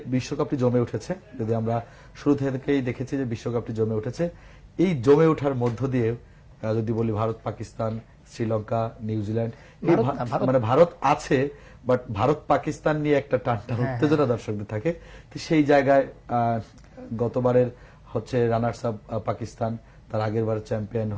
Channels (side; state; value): both; identical; correlation 1.00